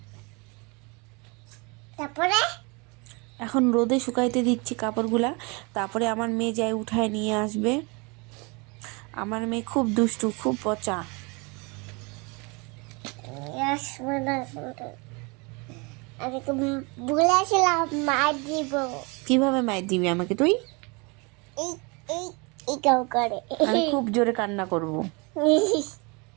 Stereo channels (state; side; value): quieter; left; 29.4 dB